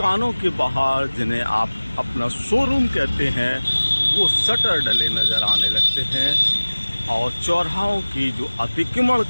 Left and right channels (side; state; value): both; inverted; correlation -1.00